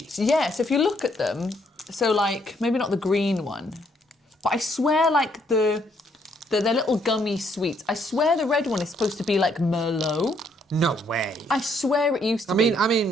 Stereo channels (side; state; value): both; normal; correlation 0.70